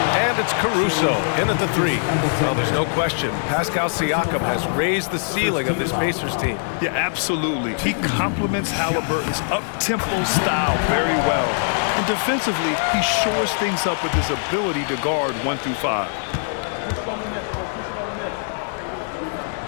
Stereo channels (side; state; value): right; silent; digital silence